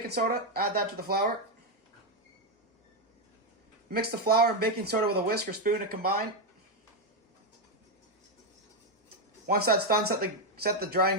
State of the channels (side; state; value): both; normal; correlation 0.04